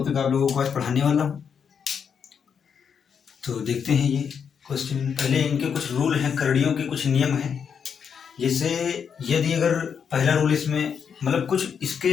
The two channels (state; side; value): quieter; right; 7.0 dB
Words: आप लोगों को आज पढ़ाने वाला हूँ। तो देखते हैं ये क्वेश्चन। पहले इनके कुछ रूल हैं, करड़ियों के कुछ नियम हैं। जैसे यदि अगर पहला रूल इसमें मतलब कुछ